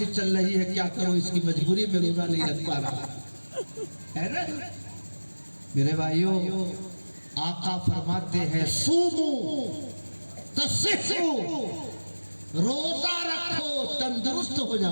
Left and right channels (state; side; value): inverted; both; correlation -1.00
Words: چل رہی ہے کیا کرو، اس کی مجبوری میں روزہ نہیں رکھ پا رہا ہے نا۔ میرے بھائیوں، آقا فرماتے ہیں سومو تصحو، روزہ رکھو تندرست ہو